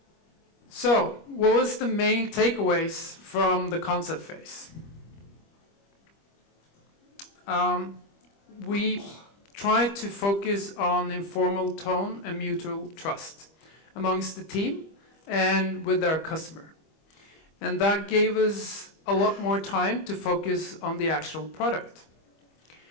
So, what was the main takeaways from the concept phase? We tried to focus on informal tone and mutual trust amongst the team and with our customer. And that gave us a lot more time to focus on the actual product.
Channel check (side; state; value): right; late; 25 ms